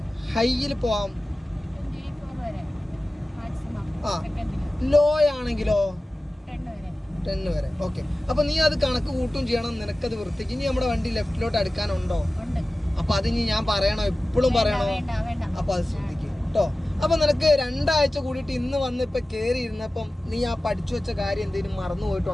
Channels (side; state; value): both; normal; correlation 0.96